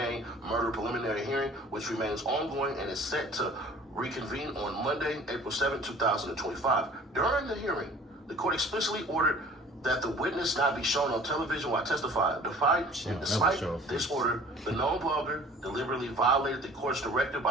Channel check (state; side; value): normal; both; correlation 0.48